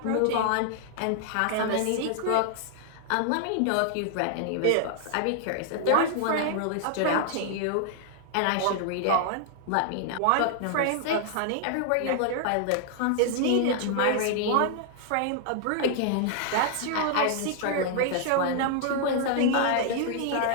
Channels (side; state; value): both; different; correlation 0.00